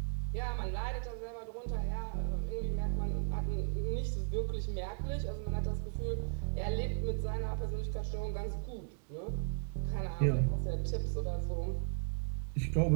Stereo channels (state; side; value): silent; left; 54 dB below the other